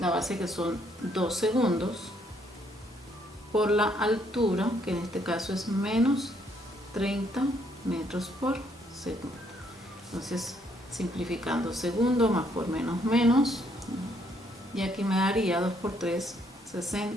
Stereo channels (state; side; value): normal; both; correlation 0.70